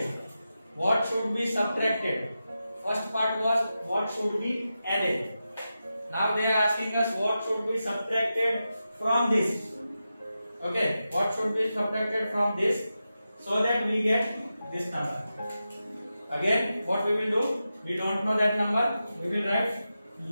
What should be subtracted? First part was what should be added. Now they are asking us what should be subtracted from this. Okay, what should be subtracted from this so that we get this number. Again, what we will do? We don't know that number. We will write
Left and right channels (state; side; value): inverted; both; correlation -0.91